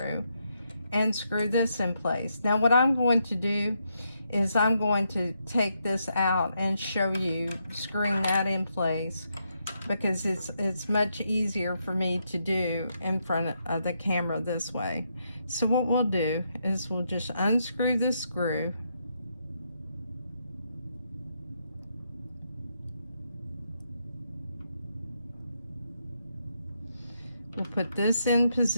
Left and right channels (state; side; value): inverted; both; correlation -0.80